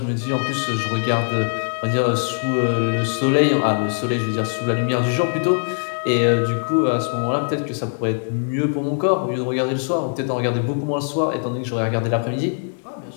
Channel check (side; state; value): right; silent; 65 dB below the other